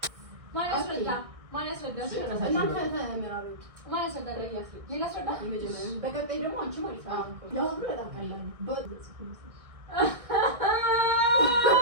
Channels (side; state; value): left; late; 1.6 ms